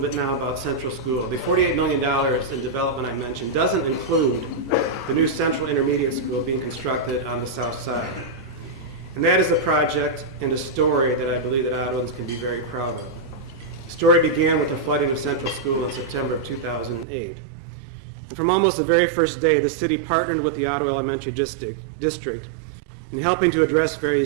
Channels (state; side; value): drops out; left; at 17.1 s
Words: now about Central School. The $48 million in development I mentioned doesn't include the new Central Intermediate School being constructed on the south side. And that is a project and a story that I believe that Ottawans can be very proud of. The story began with the flooding of Central School in September of 2008. And from almost the very first day, the city partnered with the Ottawa Elementary District in helping to address